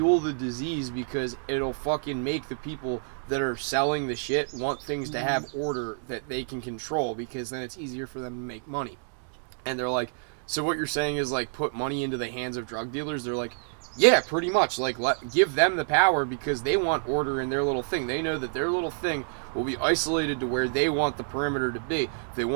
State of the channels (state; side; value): silent; left; digital silence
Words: the disease because it'll fucking make the people that are selling the shit want things to have order that they can control because then it's easier for them to make money. And they're like, so what you're saying is like put money into the hands of drug dealers? They're like, yeah, pretty much. Like, give them the power because they want order in their little thing. They know that their little thing will be isolated to where they want the perimeter to be. If they